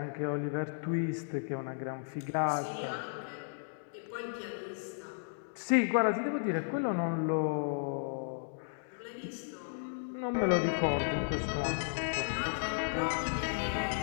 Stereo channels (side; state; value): right; silent; digital silence